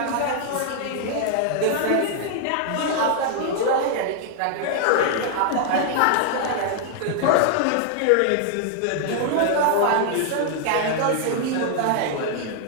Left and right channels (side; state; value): both; different; correlation 0.00